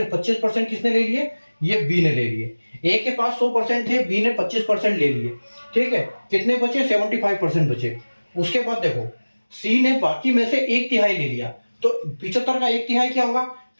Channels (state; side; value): inverted; both; correlation -1.00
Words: 25% किसने ले लिए? ये बी ने ले लिए। ए के पास 100% है, बी ने 25% ले लिए, ठीक है, कितने बचे? 75% बचे। उसके बाद देखो सी ने बाकी में से 1/3 ले लिया, तो 75 का 1/3 क्या होगा?